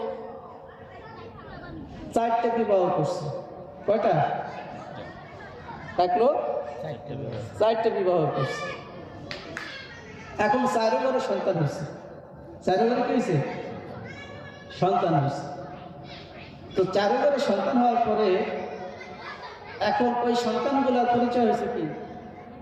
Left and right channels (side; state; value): both; identical; correlation 1.00